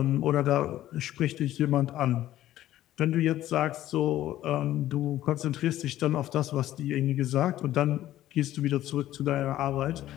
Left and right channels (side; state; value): right; quieter; 13.7 dB